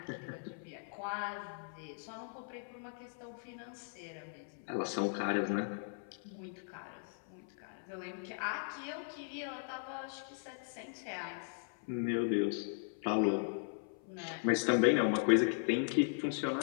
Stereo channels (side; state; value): right; silent; 52 dB below the other